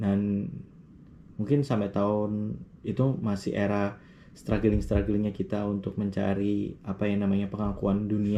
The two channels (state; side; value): identical; both; correlation 1.00